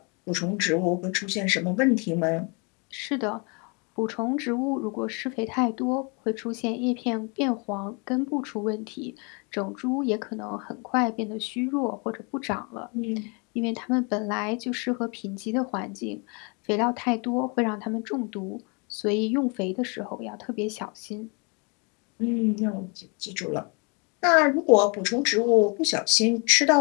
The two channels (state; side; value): quieter; right; 33.1 dB